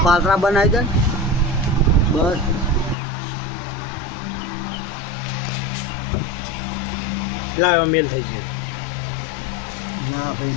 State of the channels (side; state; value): right; drops out; at 3.0 s